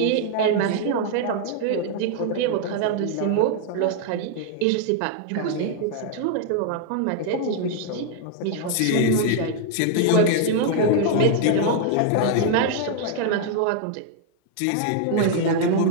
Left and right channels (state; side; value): different; both; correlation 0.00